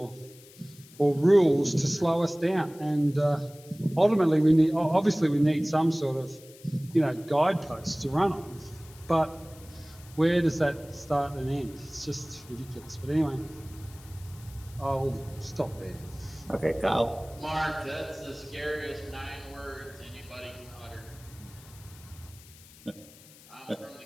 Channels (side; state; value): left; noise; hiss, 22 dB below the sound